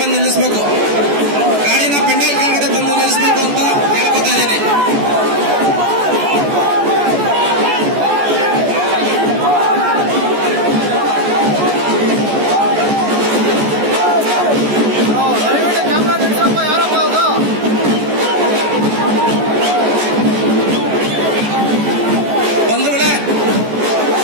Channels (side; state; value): left; late; 14 ms